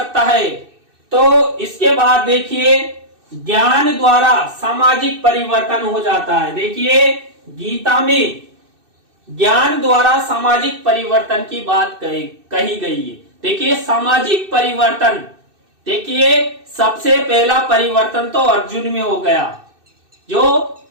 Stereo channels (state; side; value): late; left; 2.6 ms